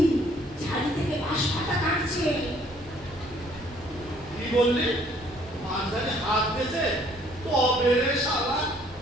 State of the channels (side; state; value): both; normal; correlation 0.62